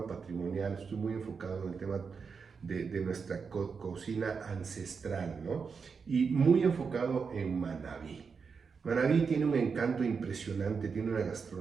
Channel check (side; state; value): left; quieter; 5.6 dB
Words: patrimonial, estoy muy enfocado en el tema de nuestra cocina ancestral, ¿no? Y muy enfocado en Manabí. Manabí tiene un encanto impresionante, tiene una